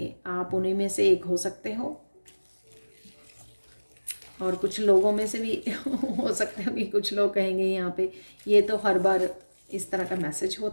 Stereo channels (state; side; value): inverted; both; correlation -1.00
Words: आप उन्हीं में से एक हो सकते हो। और कुछ लोगों में से भी हो सकते हो कि कुछ लोग कहेंगे यहाँ पे ये तो हर बार इस तरह का मैसेज